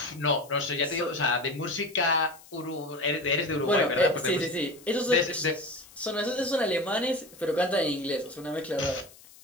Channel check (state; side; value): noise; left; hiss, 23 dB below the sound